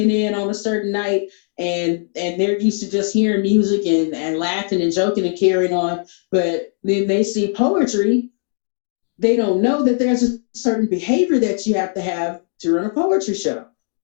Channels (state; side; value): silent; right; 60 dB below the other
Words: in on a certain night and they're used to just hearing music and laughing and joking and carrying on. But then they see poetry, they don't know that there's a certain behavior that you have to run a poetry show.